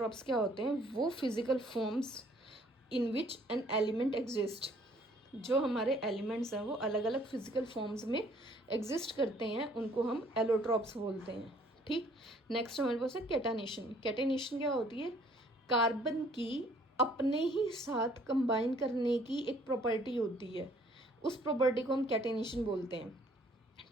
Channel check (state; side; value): normal; both; correlation 0.60